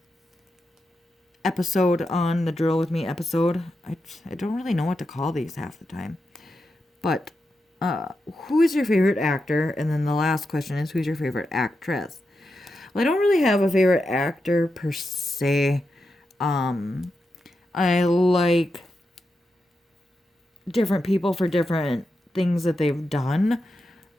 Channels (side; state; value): both; normal; correlation 0.87